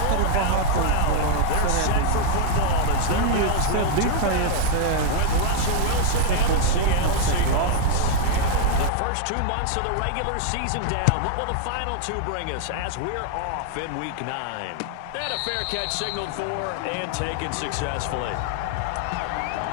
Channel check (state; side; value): different; both; correlation -0.01